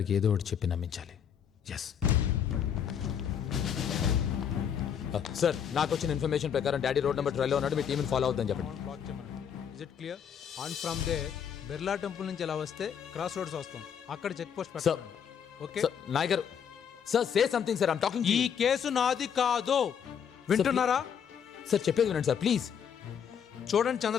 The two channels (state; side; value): quieter; right; 8.0 dB